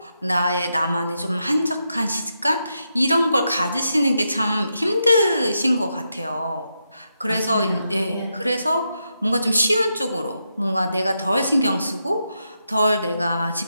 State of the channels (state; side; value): inverted; both; correlation -0.84